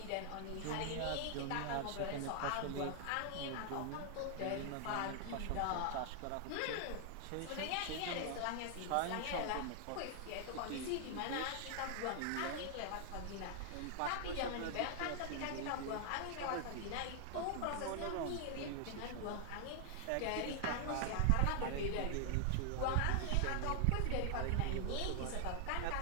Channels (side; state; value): both; different; correlation 0.00